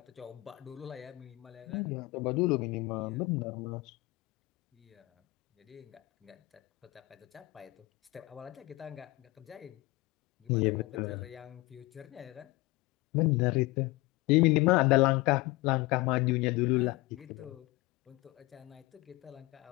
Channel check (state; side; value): quieter; right; 21.4 dB